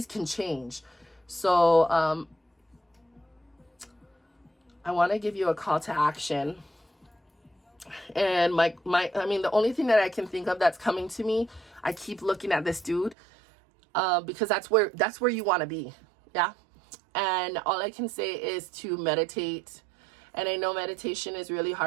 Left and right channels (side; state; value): left; drops out; at 13.2 s